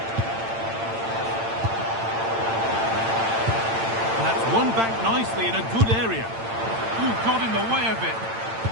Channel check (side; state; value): left; late; 8.9 ms